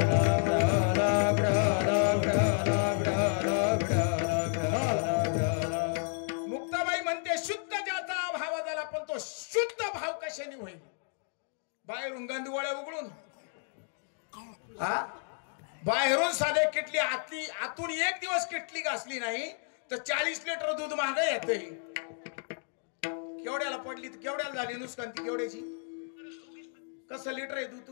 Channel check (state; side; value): silent; right; 57 dB below the other